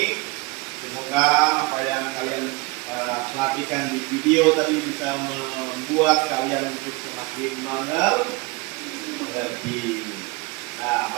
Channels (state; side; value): quieter; left; 24.5 dB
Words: Semoga apa yang kalian perhatikan di video tadi bisa membuat kalian untuk semakin mengerti. Nah,